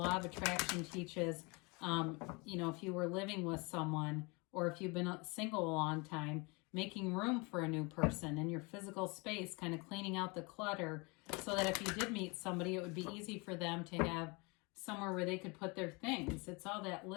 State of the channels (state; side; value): quieter; right; 28.4 dB